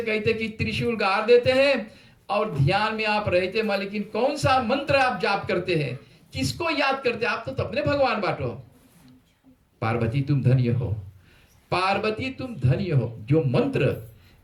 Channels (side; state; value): both; identical; correlation 1.00